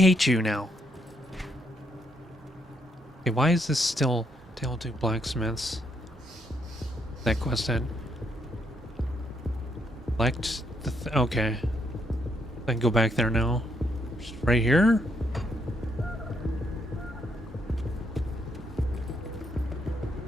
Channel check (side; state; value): both; normal; correlation 0.74